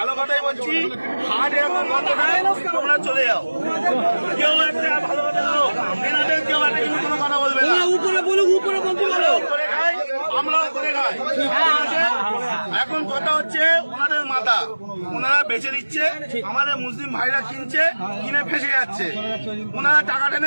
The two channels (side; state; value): both; inverted; correlation -1.00